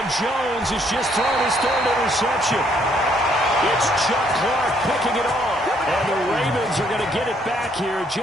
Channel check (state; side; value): normal; both; correlation 0.68